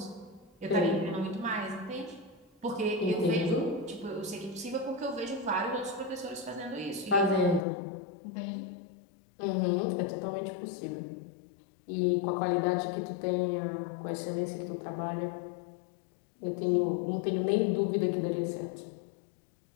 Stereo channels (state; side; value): drops out; right; at 7.6 s